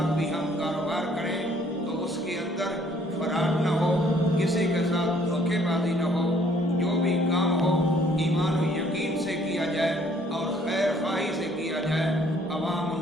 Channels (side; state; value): both; normal; correlation 0.62